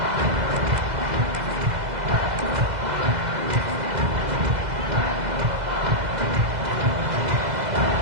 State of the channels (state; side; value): late; left; 2.0 ms